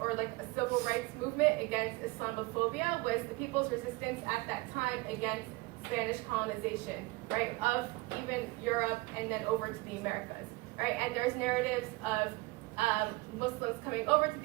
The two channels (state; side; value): quieter; left; 22.8 dB